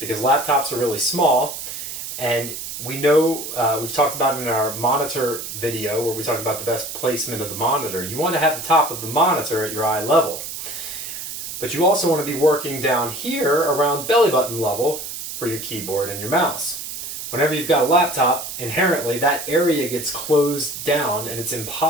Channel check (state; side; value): noise; right; hiss, 8 dB below the sound